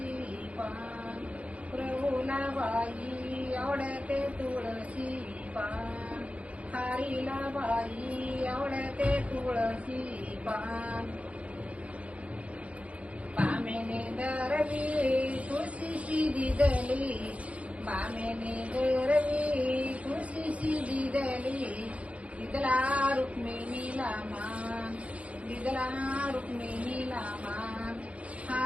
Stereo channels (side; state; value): left; late; 0.064 ms